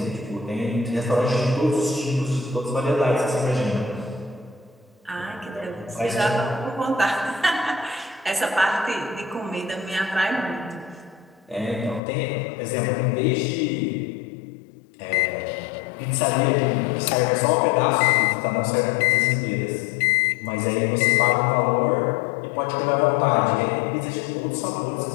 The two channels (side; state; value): right; drops out; at 12.0 s